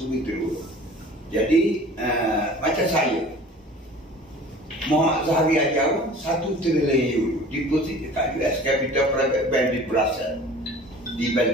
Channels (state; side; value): normal; both; correlation 0.44